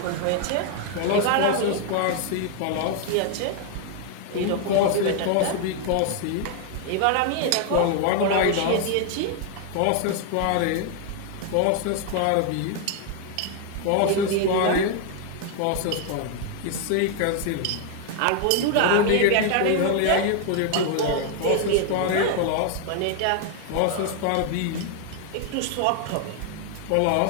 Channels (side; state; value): both; different; correlation 0.00